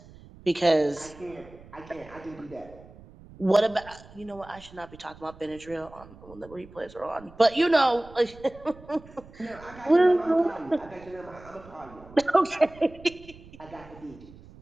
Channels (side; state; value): right; noise; rumble, 21 dB below the sound